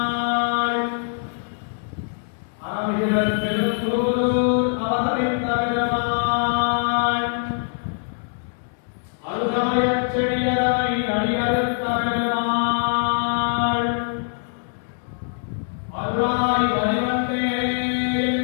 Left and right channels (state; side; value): silent; right; 63 dB below the other